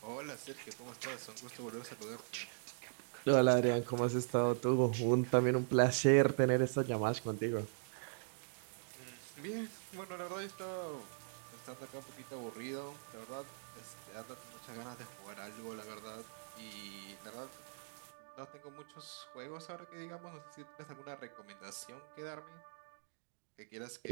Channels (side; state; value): left; silent; digital silence